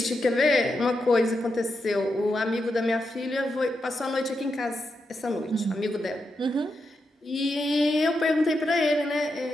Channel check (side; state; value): both; normal; correlation 0.85